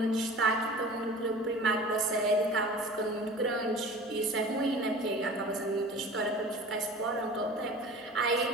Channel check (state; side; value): normal; both; correlation 0.40